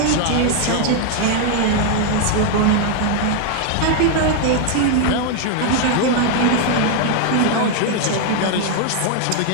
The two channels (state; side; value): different; both; correlation 0.00